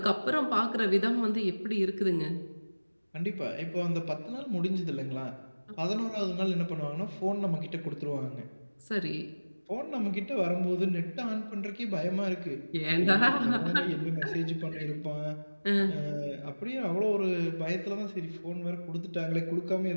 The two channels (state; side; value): inverted; both; correlation -1.00